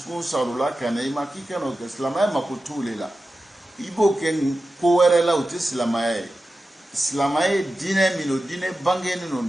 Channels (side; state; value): both; normal; correlation 0.93